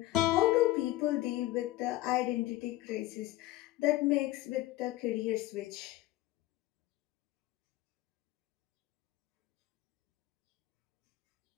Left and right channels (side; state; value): right; quieter; 16.9 dB